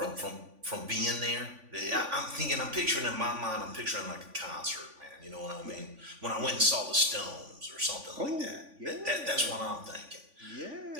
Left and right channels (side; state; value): left; late; 3.5 ms